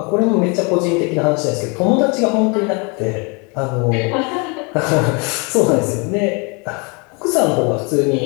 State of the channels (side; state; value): right; quieter; 31.6 dB